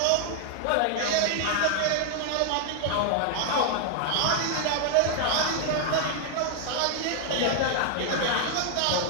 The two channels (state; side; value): different; both; correlation 0.00